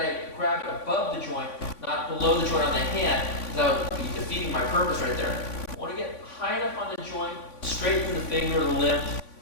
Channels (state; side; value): late; right; 3.5 ms